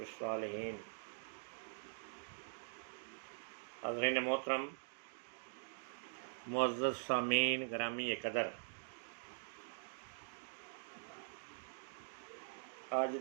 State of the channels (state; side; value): silent; left; digital silence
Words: हज़रीन मोहतरम, मुअज़्ज़ज़ सामीन ग्रामी कदर, अज